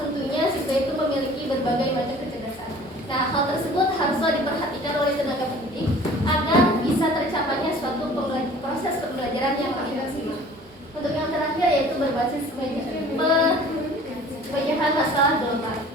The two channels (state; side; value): normal; both; correlation 0.48